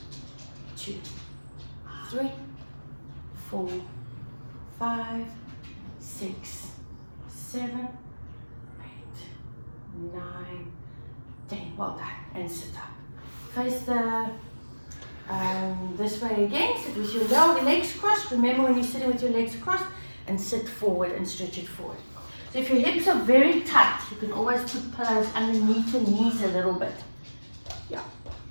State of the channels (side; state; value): both; inverted; correlation -1.00